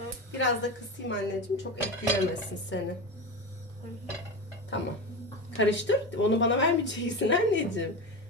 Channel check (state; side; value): normal; both; correlation 0.22